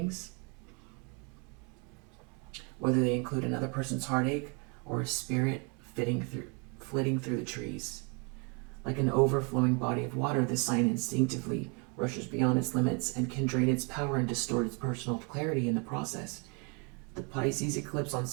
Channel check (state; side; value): quieter; left; 34.0 dB